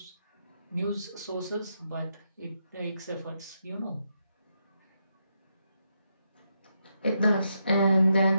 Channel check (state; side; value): inverted; both; correlation -0.82